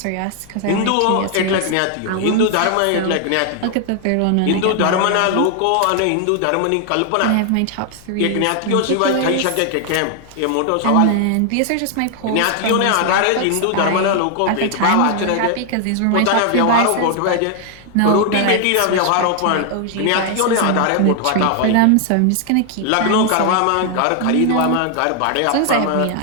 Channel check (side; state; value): both; different; correlation 0.00